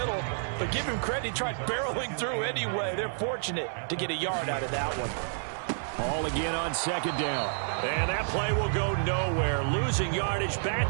But give him credit, he tried barreling through anyway. They're fortunate to get a yard out of that one. Ball again on 2nd down. And that play will go nowhere. Losing yardage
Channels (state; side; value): silent; left; 58 dB below the other